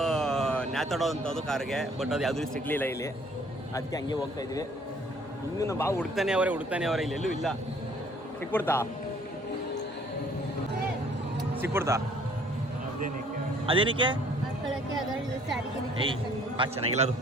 ನ್ಯಾತಾಡೋ ಅಂಥದ್ದು ಕಾರ್ಗೆ. ಬಟ್ ಅದು ಯಾವುದೂ ಸಿಗಲಿಲ್ಲ ಇಲ್ಲಿ, ಅದಕ್ಕೆ ಹಂಗೆ ಹೋಗ್ತಾ ಇದ್ವಿ. ಇನ್ನೂ ನಮ್ಮ ಬಾವು ಹುಡುಕ್ತಾನೆ ಅವರೇ, ಇಲ್ಲೆಲ್ಲೂ ಇಲ್ಲ. ಸಿಕ್ಬಿಡ್ತಾ ಅದೇನಕ್ಕೆ? ಏಯ್ ಚೆನ್ನಾಗಿಲ್ಲ ಅದು,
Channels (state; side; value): normal; both; correlation 0.58